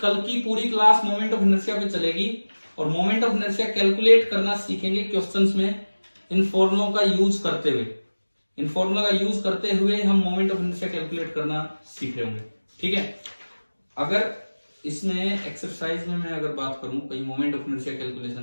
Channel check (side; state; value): both; inverted; correlation -1.00